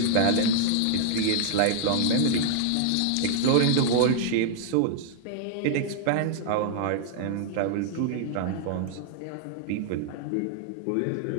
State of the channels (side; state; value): both; different; correlation 0.00